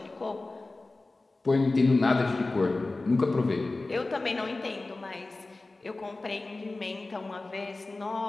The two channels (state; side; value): quieter; right; 3.2 dB